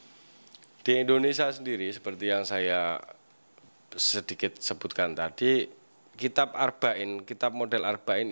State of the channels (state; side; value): inverted; both; correlation -1.00